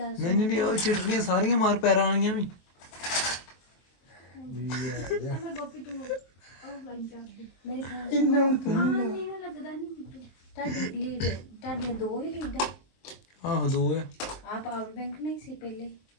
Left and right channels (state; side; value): late; right; 23 ms